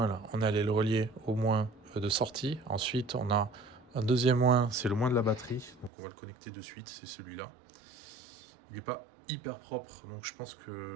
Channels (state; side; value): drops out; left; at 5.9 s